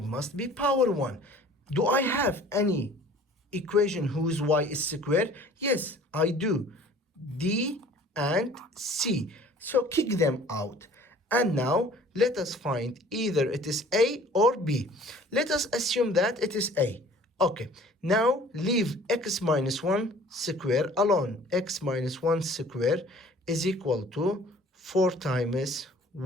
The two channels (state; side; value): normal; both; correlation 0.50